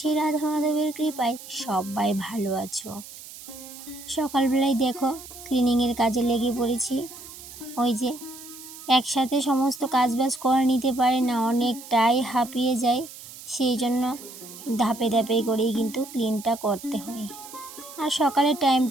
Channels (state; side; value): noise; right; hiss, 15 dB below the sound